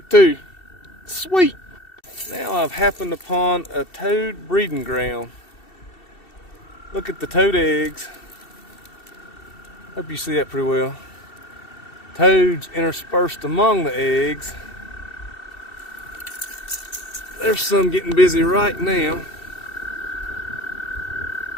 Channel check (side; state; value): right; late; 2.7 ms